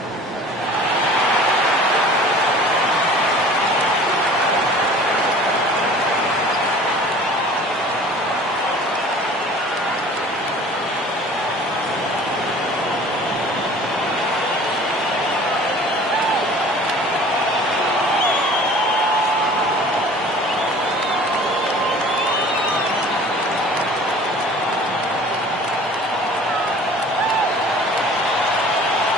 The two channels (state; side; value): normal; both; correlation 0.46